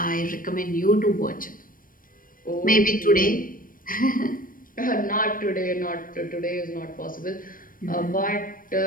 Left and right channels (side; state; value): right; late; 0.40 ms